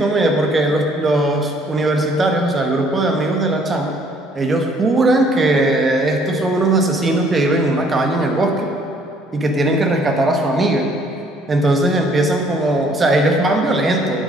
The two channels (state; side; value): normal; both; correlation 0.62